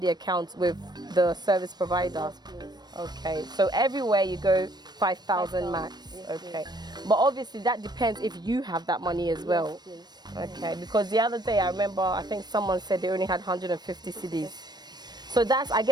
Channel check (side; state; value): left; late; 0.20 ms